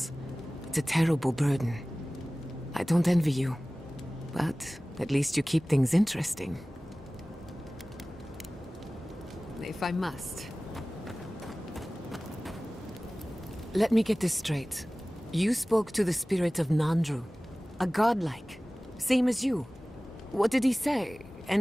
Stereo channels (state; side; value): normal; both; correlation 0.98